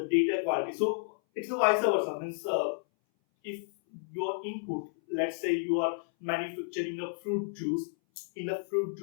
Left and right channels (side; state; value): right; silent; 57 dB below the other